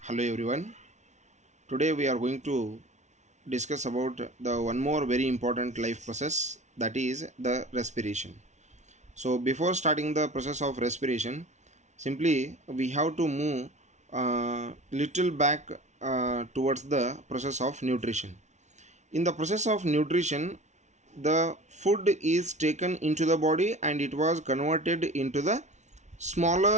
Hello everyone. Today we are going to discuss about the one more very important life process, that is the respiration. So before starting the process of respiration, simply we have to move little back towards the process of nutrition. In the process of nutrition, the food is taken into the body and it was converted into the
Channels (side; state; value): left; late; 0.33 ms